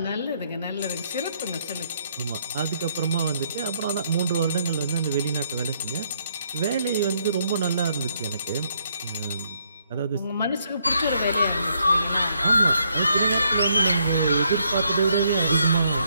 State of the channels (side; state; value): both; inverted; correlation -0.72